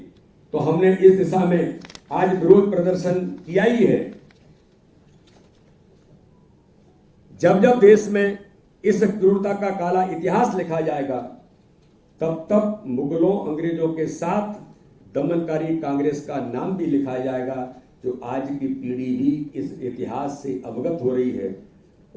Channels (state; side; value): identical; both; correlation 1.00